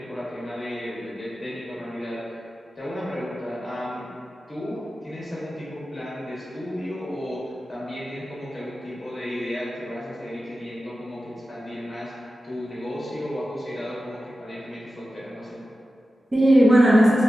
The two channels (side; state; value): both; normal; correlation 0.94